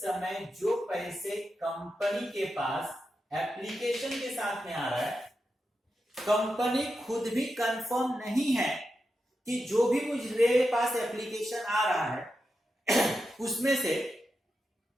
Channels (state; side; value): normal; both; correlation 0.88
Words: जो पैसे कंपनी के पास एप्लीकेशन के साथ में आ रहा है, कंपनी खुद भी कंफर्म नहीं है कि जो भी मुझे पास एप्लीकेशन आ रहा है उसमें से